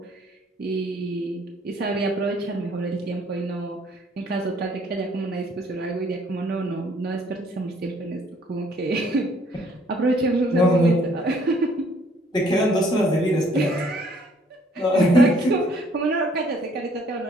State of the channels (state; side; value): normal; both; correlation 0.62